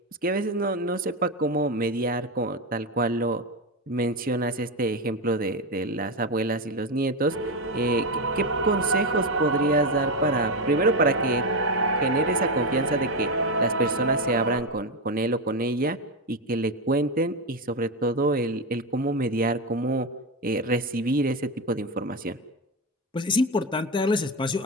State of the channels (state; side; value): normal; both; correlation 0.12